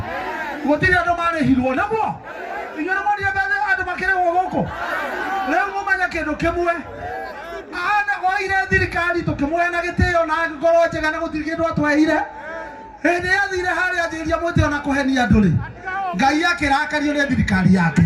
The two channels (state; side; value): identical; both; correlation 1.00